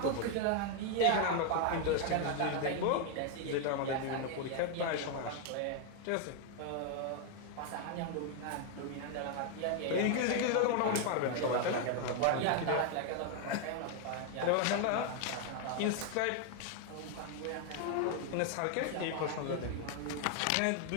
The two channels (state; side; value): different; both; correlation 0.01